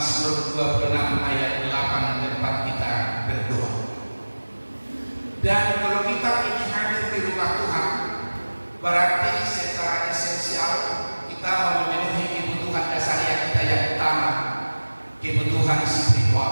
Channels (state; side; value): inverted; both; correlation -1.00